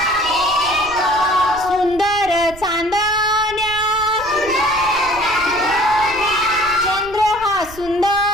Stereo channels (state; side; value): noise; right; rumble, 17 dB below the sound